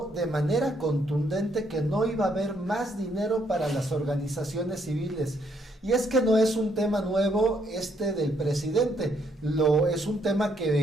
de manera contundente que no iba a haber más dinero para las organizaciones civiles. Y es que no es un tema nuevo del presidente, es un tema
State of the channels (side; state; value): both; normal; correlation 0.71